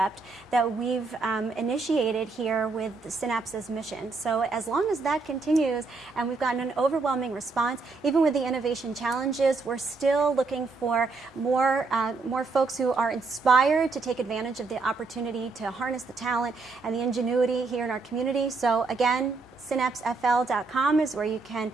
that we've initiated here with Synapse's mission. So as long as that continues and we've gotten an overwhelming response, even with the innovation challenges, we're still looking for more folks who are inspired to take advantage of the opportunity to harness the talent and the ingenuity here in our community. So again, synapsefl.com is where you can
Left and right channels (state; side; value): quieter; left; 4.0 dB